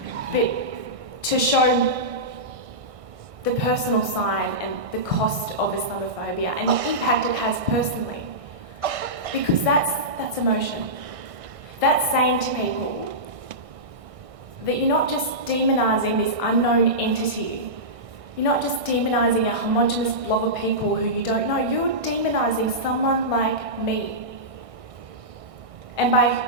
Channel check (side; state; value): left; late; 1.6 ms